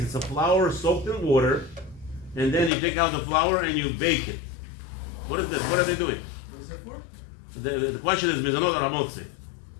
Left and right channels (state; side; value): drops out; right; at 2.7 s